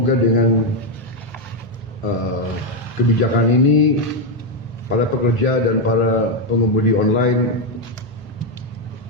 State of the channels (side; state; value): both; normal; correlation 0.04